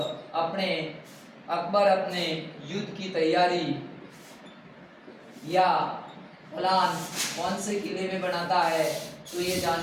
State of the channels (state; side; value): identical; both; correlation 1.00